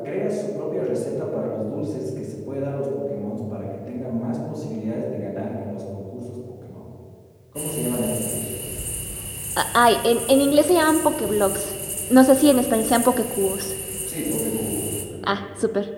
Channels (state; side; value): identical; both; correlation 1.00